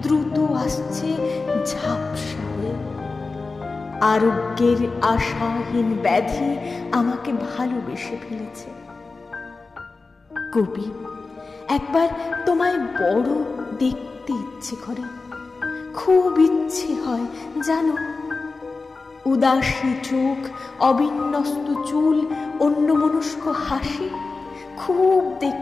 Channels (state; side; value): quieter; right; 3.9 dB